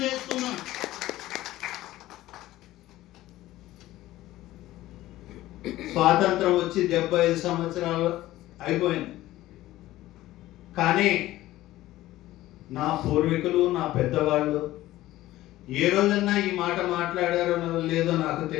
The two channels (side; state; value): right; quieter; 15.9 dB